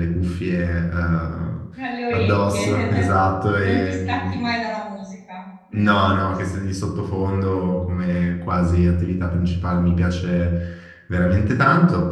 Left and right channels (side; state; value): both; identical; correlation 1.00